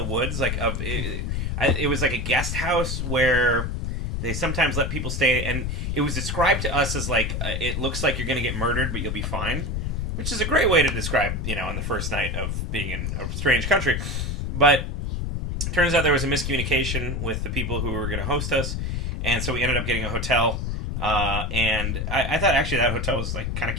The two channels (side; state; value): left; noise; rumble, 2 dB below the sound